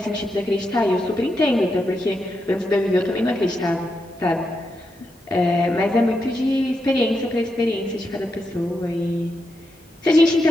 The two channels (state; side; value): normal; both; correlation 0.84